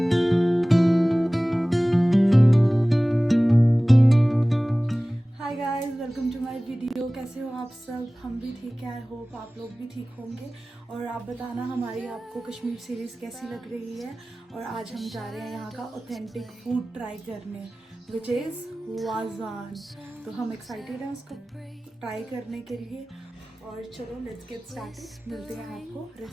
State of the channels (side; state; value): both; normal; correlation 0.98